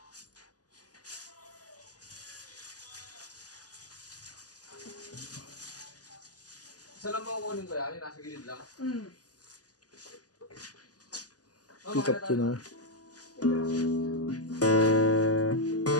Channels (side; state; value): right; late; 0.67 ms